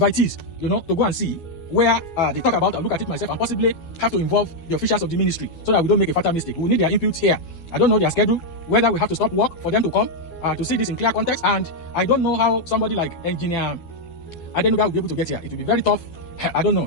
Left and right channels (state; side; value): late; right; 12 ms